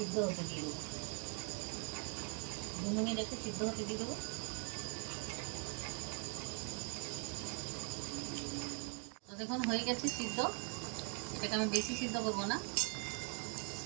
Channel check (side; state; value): left; quieter; 39.9 dB